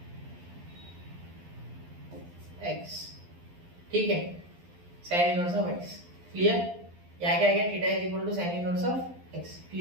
x, ठीक है, sine inverse of x. Clear? यहाँ क्या आ गया, theta is equal to sine inverse of x.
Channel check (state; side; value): late; left; 12 ms